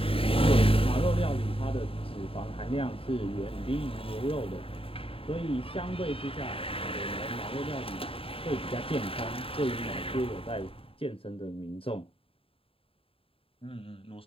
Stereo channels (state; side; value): late; right; 0.27 ms